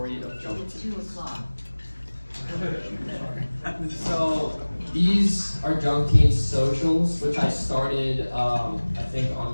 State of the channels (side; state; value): both; inverted; correlation -1.00